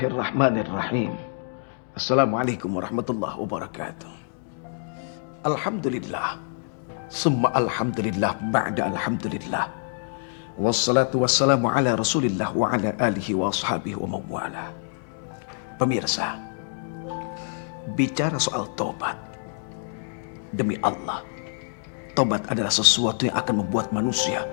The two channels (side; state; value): right; silent; 61 dB below the other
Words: Assalamualaikum warahmatullahi wabarakatuh. Alhamdulillah. Summa alhamdulillah ba'da alhamdulillah. Wassalatu wassalamu ala rasulillah wa ala alihi wa ashabihi wa mawala. Pemirsa, bicara soal tobat. Demi Allah, tobat adalah sesuatu yang akan membuat manusia